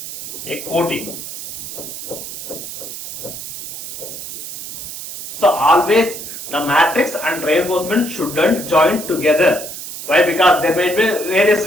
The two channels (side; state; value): right; noise; hiss, 9 dB below the sound